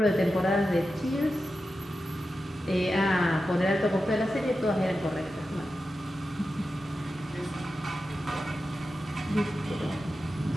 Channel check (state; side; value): normal; both; correlation 0.91